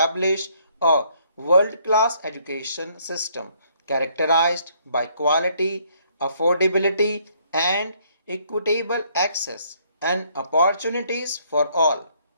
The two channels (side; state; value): both; inverted; correlation -0.66